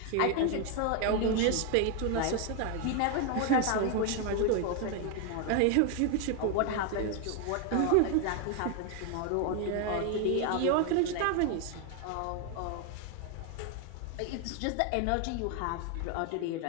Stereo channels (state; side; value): different; both; correlation 0.01